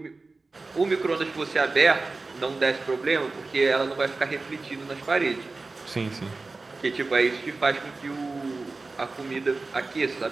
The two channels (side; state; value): left; quieter; 3.6 dB